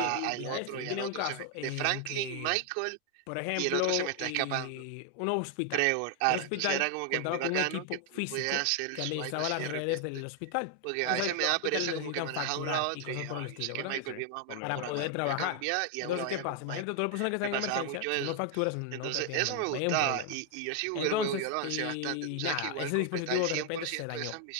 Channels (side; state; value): both; different; correlation 0.00